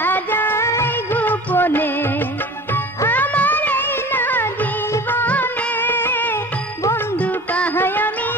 যায় গোপনে আমার এই না জীবনে বন্ধু পাহাই আমি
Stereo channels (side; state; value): both; normal; correlation 0.40